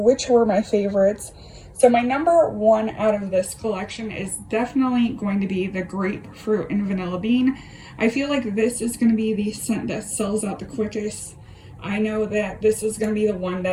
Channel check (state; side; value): identical; both; correlation 1.00